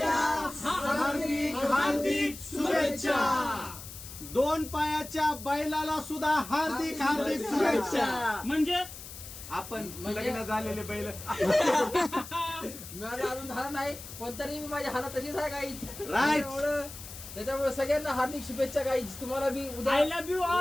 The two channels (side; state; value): left; noise; hiss, 13 dB below the sound